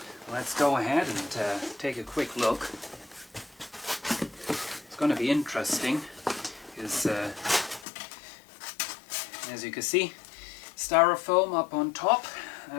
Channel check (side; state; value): right; drops out; at 7.9 s